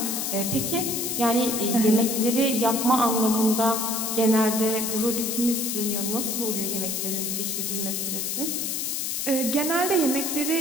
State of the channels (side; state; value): left; noise; hiss, 1 dB below the sound